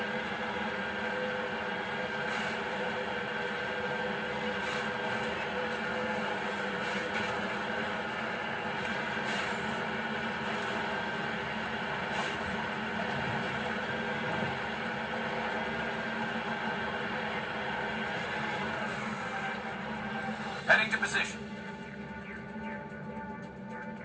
Heading to position.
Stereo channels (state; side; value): identical; both; correlation 1.00